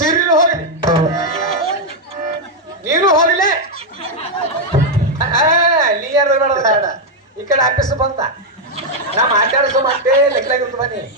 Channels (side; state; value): both; normal; correlation 0.00